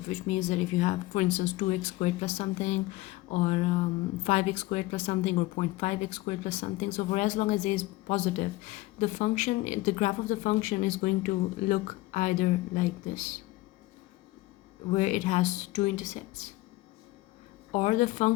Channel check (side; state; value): right; quieter; 19.0 dB